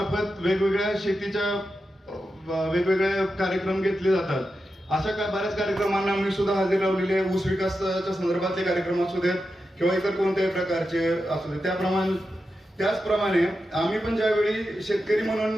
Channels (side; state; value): both; normal; correlation 0.89